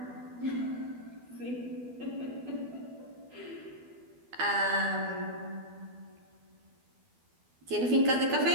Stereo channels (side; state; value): left; late; 12 ms